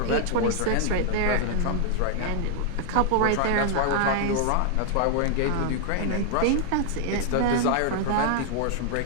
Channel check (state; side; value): different; both; correlation 0.00